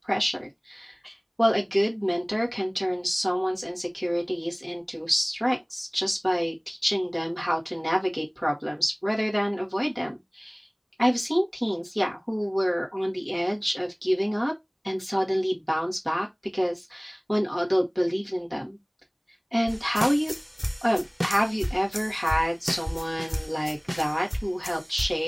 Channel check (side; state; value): both; identical; correlation 1.00